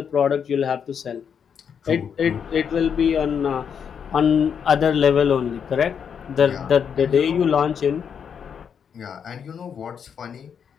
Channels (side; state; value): right; quieter; 7.4 dB